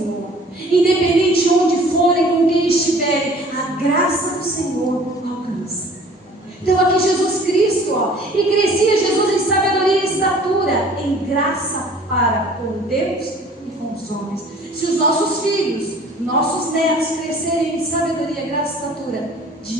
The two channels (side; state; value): both; normal; correlation 0.50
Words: Independente de onde forem, com quem estiverem, a graça do Senhor alcança. Então aqui Jesus Cristo, e crescia Jesus em sabedoria e estatura, em graça para com Deus e com os homens. Se os nossos filhos, nossos netos crescerem em sabedoria, graça e estatura,